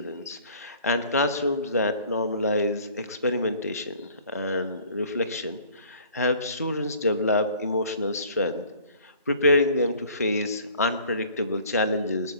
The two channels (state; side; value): inverted; both; correlation -0.52